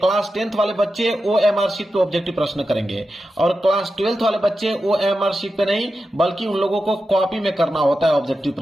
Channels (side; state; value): both; normal; correlation 0.90